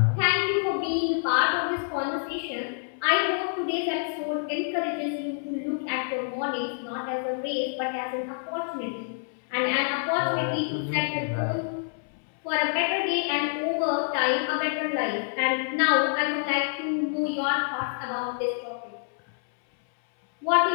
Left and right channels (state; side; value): silent; right; 60 dB below the other